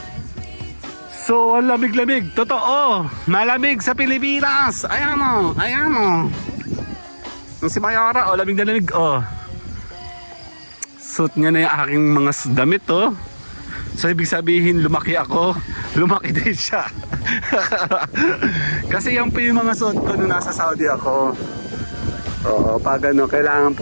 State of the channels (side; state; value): both; inverted; correlation -1.00